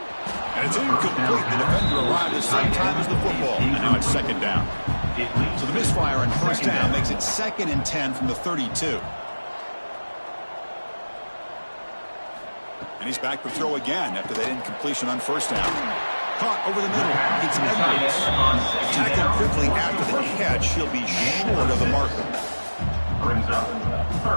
And it's incomplete. The defender arrived at the same time as the football. And now it's 2nd down. So the misfire on 1st down makes it 2nd and 10 from the 32. And he's back to throw again after that incompletion on 1st down. Caught over the middle. It's Edwards. Tackled quickly after the catch. He'll be short of the marker. Brings up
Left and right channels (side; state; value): both; inverted; correlation -1.00